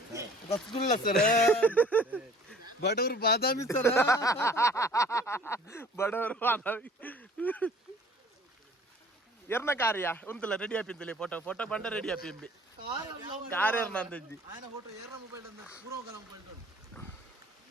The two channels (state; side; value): normal; both; correlation 0.51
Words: ರಸಗುಲ್ಲ ಸರ್ ಬಡವರು ಬಾದಾಮಿ ಸರ್ ಬಡವರು ಬಾದಾಮಿ ಎರ್ನ ಕಾರ್ಯ ಉಂತಲ್ಲ ರೆಡಿ ಆಪಿಂತಲಿ ಫೋಟೋ ಬಂಡ ರೆಡಿ ಆಪಿಂಬಿ ಕಾರ್ ಎರ್ನ ಅಂದಿ